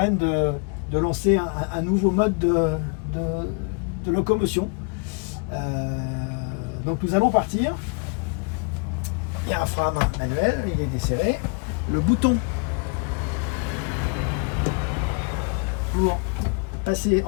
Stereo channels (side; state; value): right; quieter; 35.8 dB